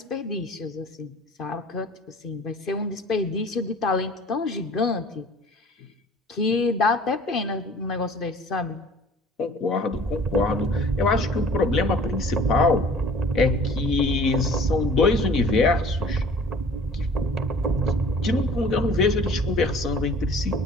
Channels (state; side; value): normal; both; correlation 0.49